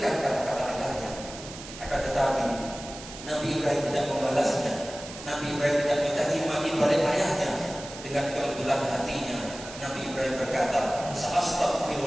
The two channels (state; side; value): noise; right; hiss, 13 dB below the sound